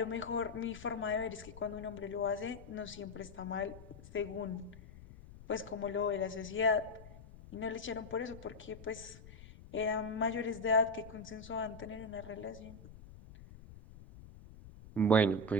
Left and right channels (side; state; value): left; noise; rumble, 17 dB below the sound